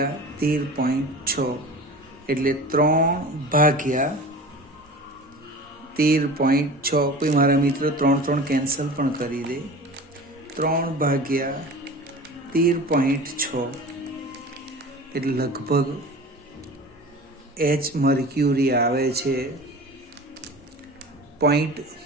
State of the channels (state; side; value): normal; both; correlation 0.36